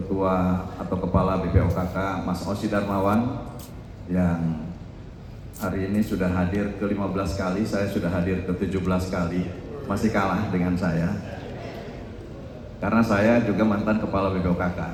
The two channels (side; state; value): both; identical; correlation 1.00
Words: atau Kepala BPOKK Mas Osi Darmawan yang hari ini sudah hadir ke-15 kali, saya sudah hadir ke-17 kali. Masih kalah dengan saya karena saya juga mantan kepala